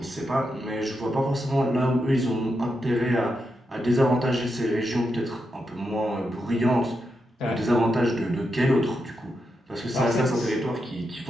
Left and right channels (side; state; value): both; normal; correlation 0.85